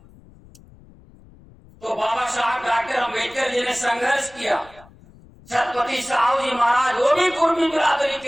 तो बाबा साहब डॉक्टर अम्बेडकर जी ने संघर्ष किया। छत्रपति साहू जी महाराज वो भी कुर्मी बिरादरी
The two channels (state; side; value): noise; left; rumble, 25 dB below the sound